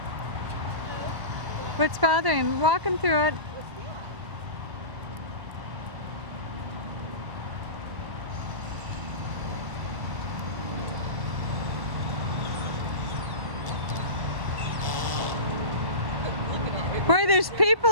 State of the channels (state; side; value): late; left; 1.1 ms